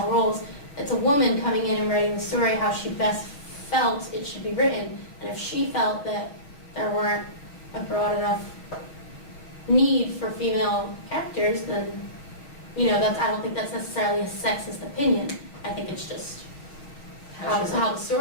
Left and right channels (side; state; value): right; late; 6.6 ms